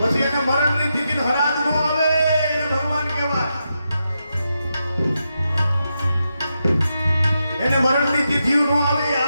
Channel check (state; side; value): inverted; both; correlation -0.86